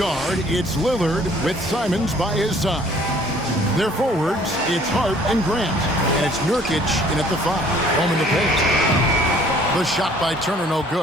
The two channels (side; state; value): both; normal; correlation 0.57